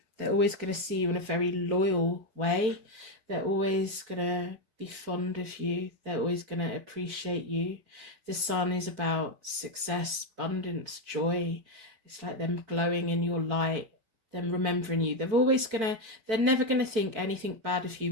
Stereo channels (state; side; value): late; left; 4.5 ms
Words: They're always going to see you in a very loyal way. They're always going to be fond of you. They're always going to appreciate you. The sun is about success, abundance, joy. It's like them glowing in your light, them remembering you. They're never going to think anything bad of